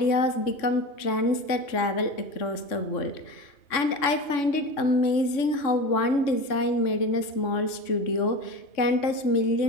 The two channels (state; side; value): late; right; 3.6 ms